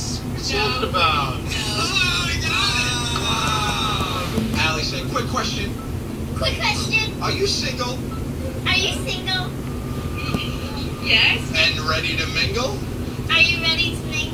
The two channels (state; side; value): identical; both; correlation 1.00